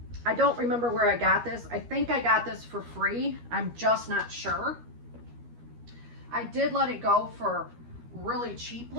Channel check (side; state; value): left; late; 13 ms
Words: I don't remember where I got this. I think I got this for free. I'm just not sure. I did let it go for really